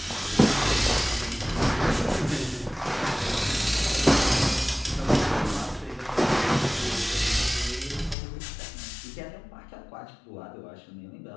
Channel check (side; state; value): right; drops out; at 8.2 s